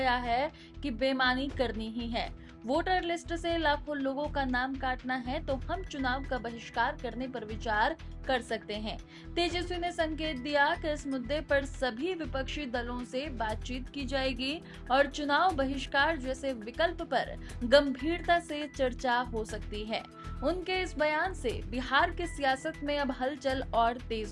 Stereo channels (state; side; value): identical; both; correlation 1.00